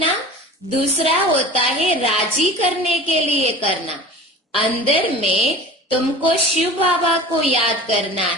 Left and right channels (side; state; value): both; normal; correlation 0.37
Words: दूसरा होता है राजी करने के लिए करना। अंदर में तुमको शिव बाबा को याद करना